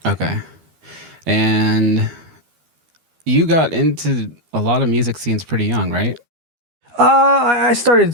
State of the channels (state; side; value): late; left; 12 ms